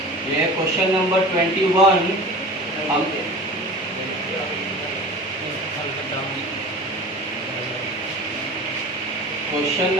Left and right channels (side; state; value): both; normal; correlation 0.37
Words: ये क्वेश्चन नंबर 21 हम क्वेश्चन